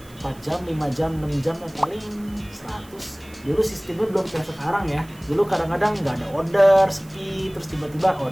4 jam, 5 jam, 6 jam paling 100. Dulu sistemnya belum kayak sekarang ya. Dulu kadang-kadang nggak ada order, sepi, terus tiba-tiba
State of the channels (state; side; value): noise; right; hiss, 24 dB below the sound